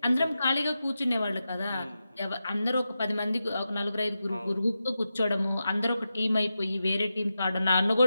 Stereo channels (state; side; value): inverted; both; correlation -0.90